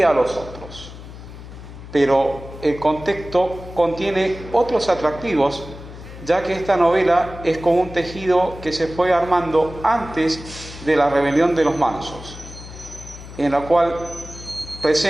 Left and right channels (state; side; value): noise; left; hum, 14 dB below the sound